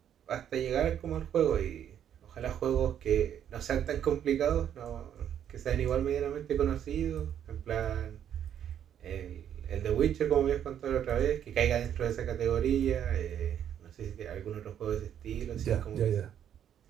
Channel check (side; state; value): left; quieter; 9.6 dB